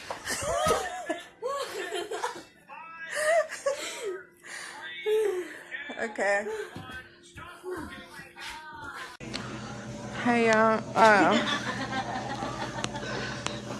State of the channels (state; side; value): identical; both; correlation 1.00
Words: Okay. Hey y'all.